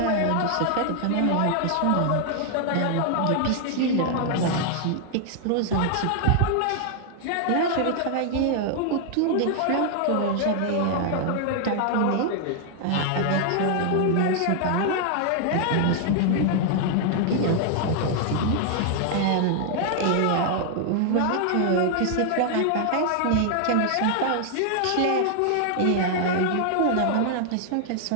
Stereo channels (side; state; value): both; different; correlation 0.00